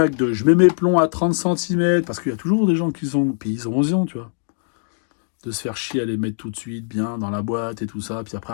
de je mets mes plombs à 30 cm, parce qu'il y a toujours des gens qui sont. Puis ils ont raison, tu vois. De se faire chier à les mettre tout de suite bien dans la boîte et tout ça, puis après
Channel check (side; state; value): right; silent; digital silence